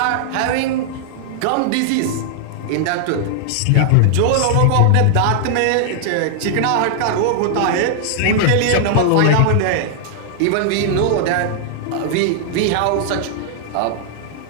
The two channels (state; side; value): different; both; correlation -0.01